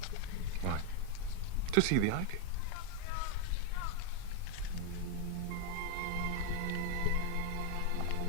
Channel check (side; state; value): both; different; correlation 0.00